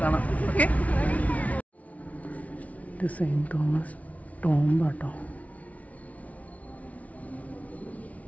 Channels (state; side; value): late; right; 0.068 ms